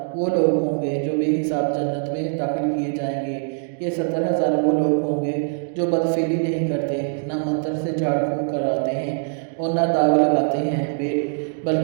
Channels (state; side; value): silent; left; digital silence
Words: وہ لوگ ہوں گے جو بے حساب جنت میں داخل کیے جائیں گے۔ یہ 70,000 وہ لوگ ہوں گے جو بدفعلی نہیں کرتے، نہ منتر سے جھاڑ پھونک کراتے ہیں اور نہ داغ لگاتے ہیں،